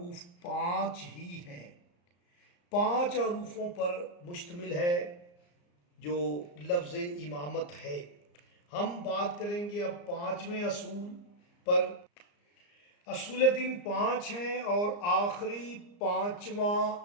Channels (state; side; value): late; right; 34 ms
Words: 5 ہی ہیں، 5 حروفوں پر مشتمل ہے جو لفظ امامت ہے۔ ہم بات کریں گے اب 5ویں اصول پر۔ اصول دین 5 ہیں اور آخری 5واں